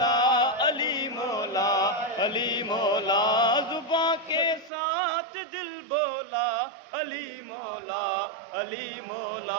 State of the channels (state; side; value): drops out; left; at 4.7 s